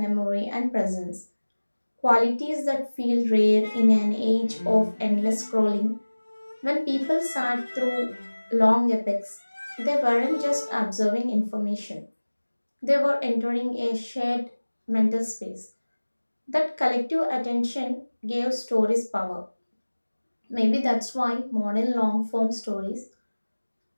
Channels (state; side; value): inverted; both; correlation -1.00